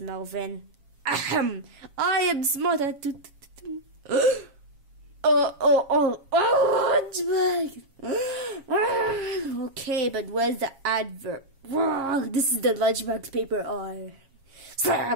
I am smarter. Okay, but where's the adverb? This is the lunchbox paper.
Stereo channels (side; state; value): left; late; 7.3 ms